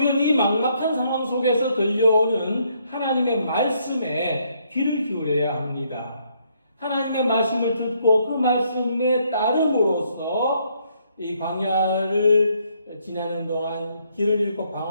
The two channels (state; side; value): inverted; both; correlation -0.71